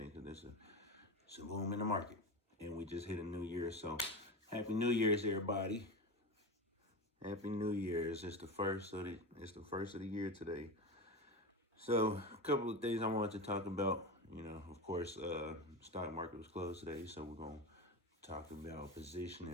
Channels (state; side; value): normal; both; correlation 0.23